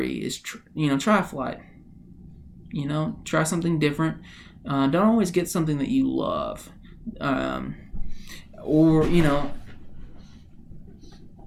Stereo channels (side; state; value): both; identical; correlation 1.00